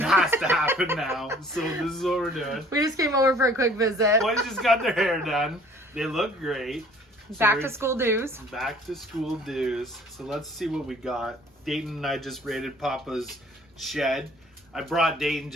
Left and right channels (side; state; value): both; normal; correlation 0.53